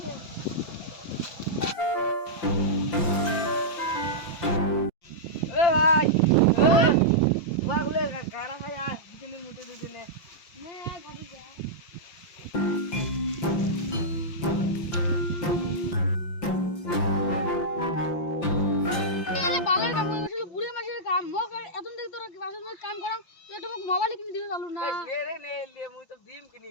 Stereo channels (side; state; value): right; late; 5.8 ms